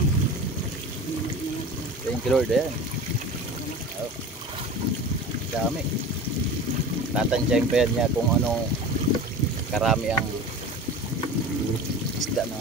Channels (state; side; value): normal; both; correlation 0.35